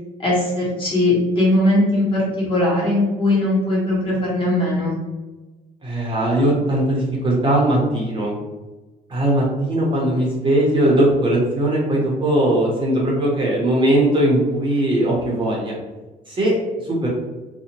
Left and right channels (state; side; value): normal; both; correlation 0.53